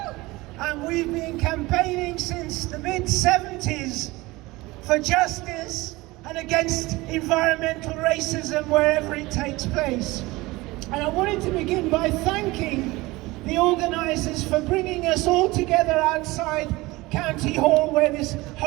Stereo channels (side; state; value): left; quieter; 21.0 dB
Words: and we've been campaigning since the mid-70s for justice and against environmental racism wherever it takes place. And I wanted to begin by thanking the organisers for bringing us all together outside County Hall where this